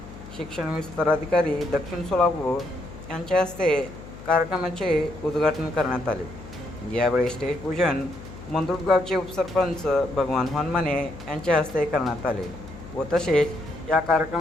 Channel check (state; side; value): noise; left; hum, 15 dB below the sound